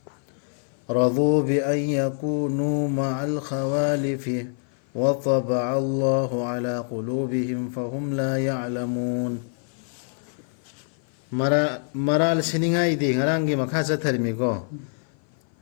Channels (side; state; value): right; silent; 56 dB below the other